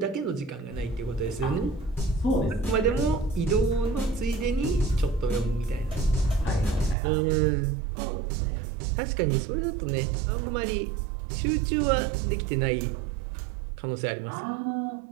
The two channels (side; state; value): left; drops out; at 7.0 s